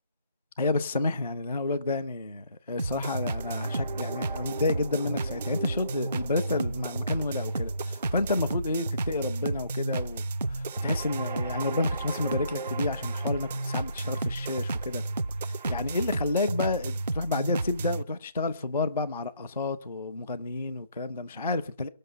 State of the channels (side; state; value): both; inverted; correlation -0.68